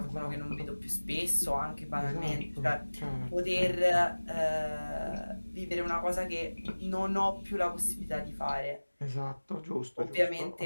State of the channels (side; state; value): both; inverted; correlation -1.00